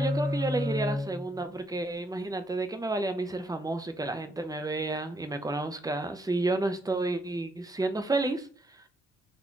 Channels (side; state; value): both; normal; correlation 0.75